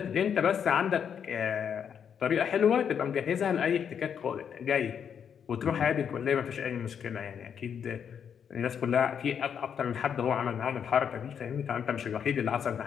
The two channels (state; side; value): quieter; right; 7.8 dB